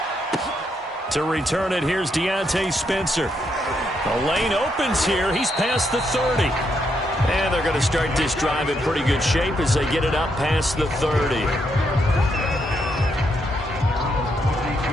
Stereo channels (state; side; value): normal; both; correlation 0.78